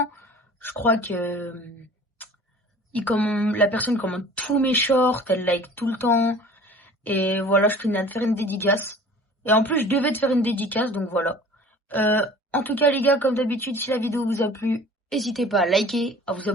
Je crois que la personne commande tous mes shorts, elle like tout le temps. Et voilà, je tenais à te faire une dédicace. Et en plus, je devais te faire une dédicace, donc voilà. En tout cas, les gars, comme d'habitude, si la vidéo vous a plu, n'hésitez pas à liker, à vous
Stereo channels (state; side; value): normal; both; correlation 0.45